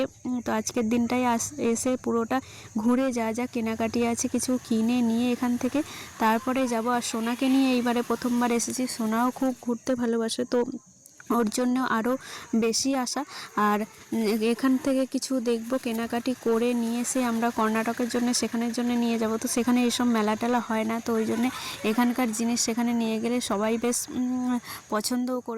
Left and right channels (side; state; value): both; identical; correlation 1.00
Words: তো আজকের দিনটাই এসে পুরোটা ঘুরে যা যা কেনাকাটি আছে কিছু কিনে নিয়ে এখান থেকে তারপরে যাব। আর সোনাকে নিয়ে এইবারে প্রথমবার এসেছি। সোনাও খুব ঘুরতে ভালোবাসে, তো ওর জন্য আরও বেশি আসা। আর এখান থেকে কিছু দেখব, কেনাকাটি করে নিয়ে এসে আমরা কর্ণাটকের জন্য সেখানের জন্য নিয়ে যাব। তো সেখানে এইসব মেলা টেলা হয় না, তো ওই জন্যে এখানকার জিনিস সেখানে নিয়ে গেলে সবাই বেশ পছন্দও